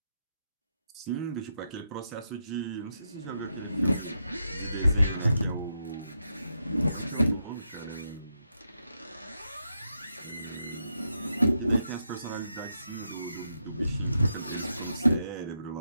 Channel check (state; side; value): inverted; both; correlation -0.82